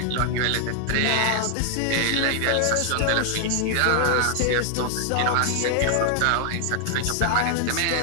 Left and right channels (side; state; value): both; different; correlation 0.00